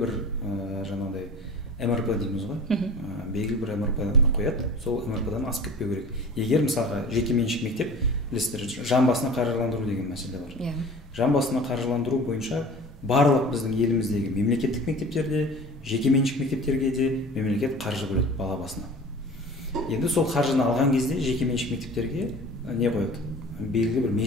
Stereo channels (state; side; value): normal; both; correlation 0.41